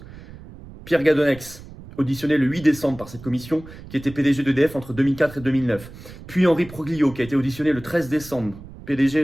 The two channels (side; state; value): right; noise; rumble, 17 dB below the sound